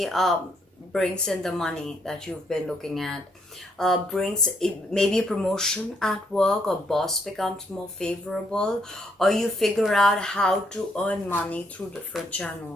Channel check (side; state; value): both; normal; correlation 0.73